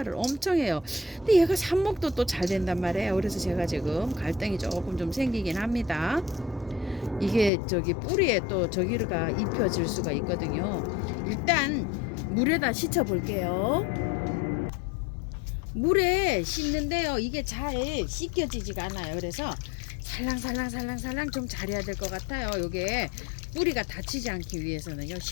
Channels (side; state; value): right; drops out; at 7.5 s